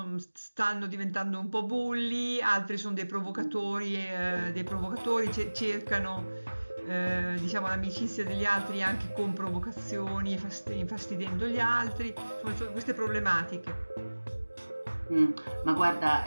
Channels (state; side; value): inverted; both; correlation -1.00